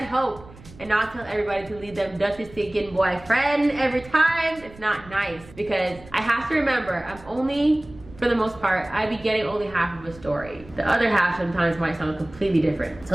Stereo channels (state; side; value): noise; right; rumble, 20 dB below the sound